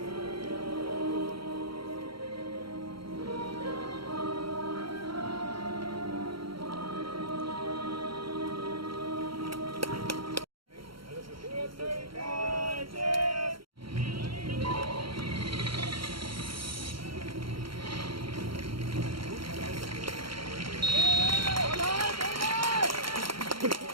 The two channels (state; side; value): late; left; 0.74 ms